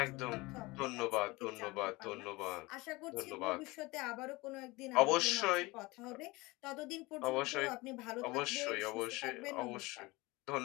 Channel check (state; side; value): quieter; right; 22.7 dB